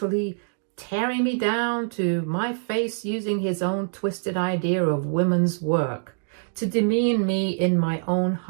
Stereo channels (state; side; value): silent; left; digital silence